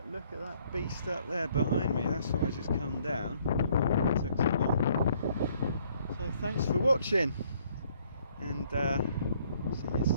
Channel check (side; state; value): both; inverted; correlation -0.64